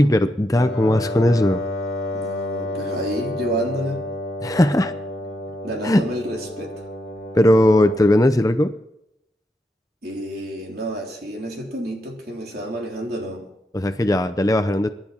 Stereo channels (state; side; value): normal; both; correlation 0.81